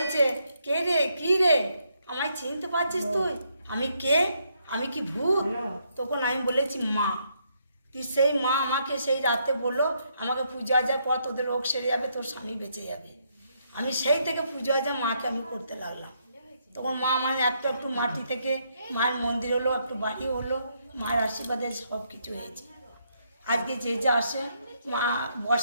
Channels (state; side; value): inverted; both; correlation -0.75